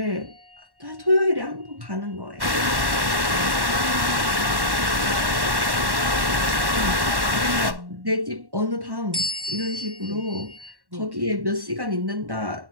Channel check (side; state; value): left; late; 1.1 ms